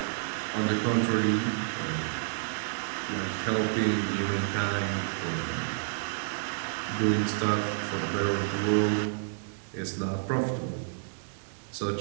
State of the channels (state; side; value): silent; left; 58 dB below the other